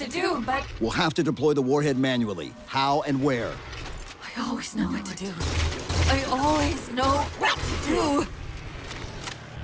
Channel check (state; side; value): identical; both; correlation 1.00